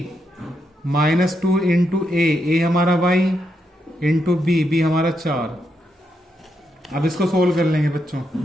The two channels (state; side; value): normal; both; correlation 0.81